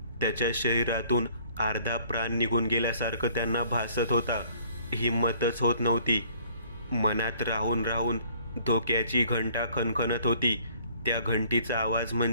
त्याच्या शरीरातून अर्धा प्राण निघून गेल्यासारखं त्यांना भासत होता. हिंमतच होत नव्हती. मनात राहून राहून धोक्याची घंटा खणखणत होती. त्या घंटीचा आवाज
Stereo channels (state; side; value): inverted; both; correlation -0.58